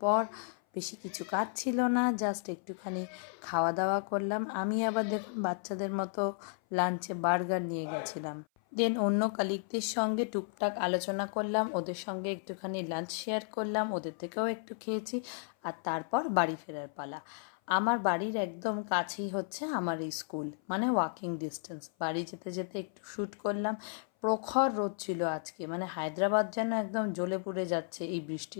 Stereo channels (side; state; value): right; silent; 55 dB below the other